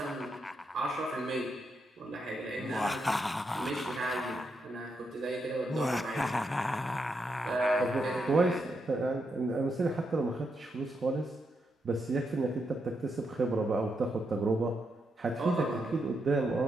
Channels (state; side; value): normal; both; correlation 0.82